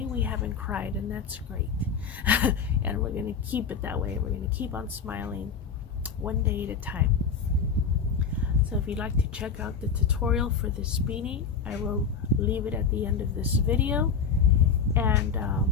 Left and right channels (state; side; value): quieter; right; 5.9 dB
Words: we haven't cried, and that's great. And we're going to keep it that way. We're going to keep on smiling one day at a time. So if you'd like to check out the tutorial for this beanie, I will leave it at the end of this video, and